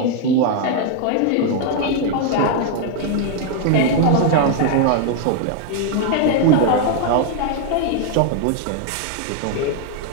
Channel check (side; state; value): both; different; correlation 0.00